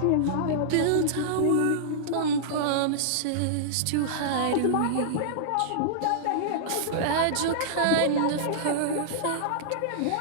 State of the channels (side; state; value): both; different; correlation -0.02